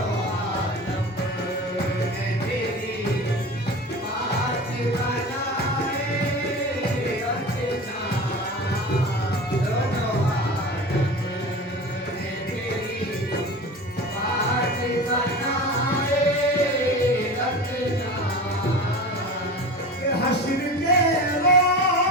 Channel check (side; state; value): both; normal; correlation 0.32